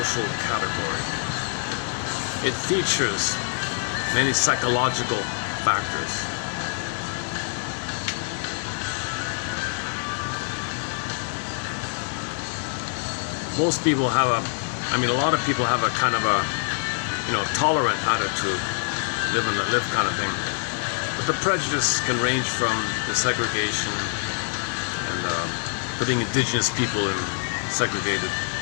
category. It features many psychological factors. Most people have a lot of people have a kind of a, tolerant attitude, live and let live kind of thing. But the prejudice can range from the segregation and putting indigenous people in segregated,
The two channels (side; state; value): right; silent; 59 dB below the other